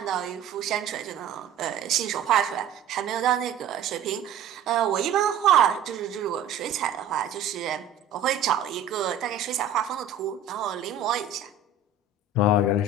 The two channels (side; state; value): left; quieter; 5.3 dB